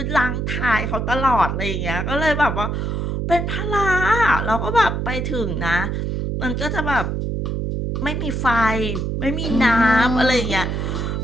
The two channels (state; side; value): noise; right; hum, 1 dB below the sound